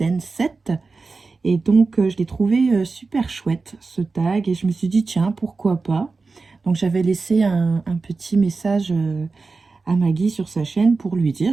7. Et donc je l'ai trouvé super chouette ce tag et je me suis dit tiens pourquoi pas. Donc j'avais laissé un petit message à Maggie sur sa chaîne pour lui dire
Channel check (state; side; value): quieter; left; 4.1 dB